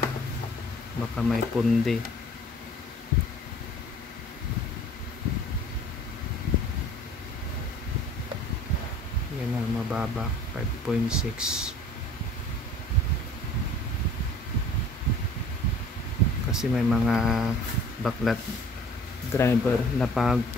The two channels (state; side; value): normal; both; correlation 0.49